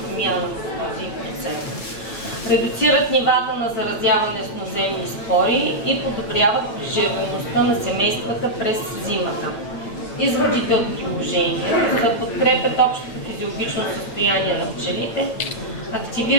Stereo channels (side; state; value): right; late; 9.1 ms